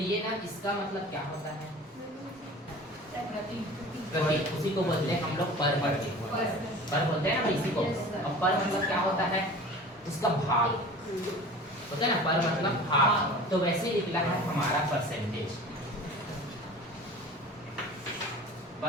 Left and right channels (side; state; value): both; normal; correlation 0.40